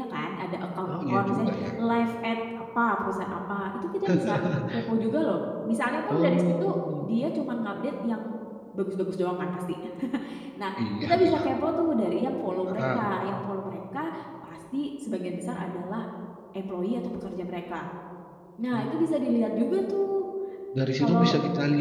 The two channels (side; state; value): both; identical; correlation 1.00